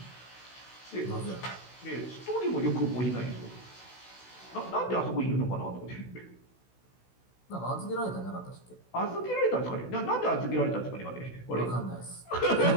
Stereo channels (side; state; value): right; late; 16 ms